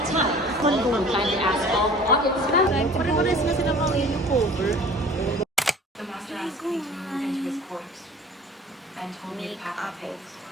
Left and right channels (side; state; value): both; normal; correlation 0.46